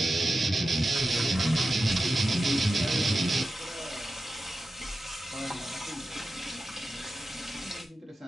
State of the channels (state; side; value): normal; both; correlation 0.92